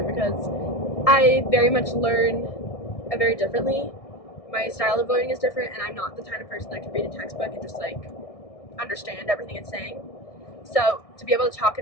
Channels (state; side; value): late; right; 1.6 ms